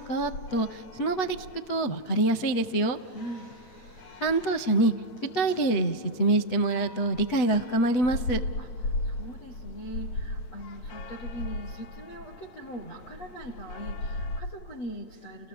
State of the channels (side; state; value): right; late; 8.1 ms